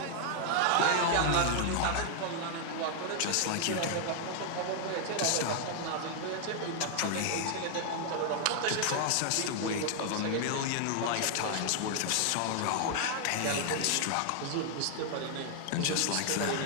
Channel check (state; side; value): different; both; correlation 0.00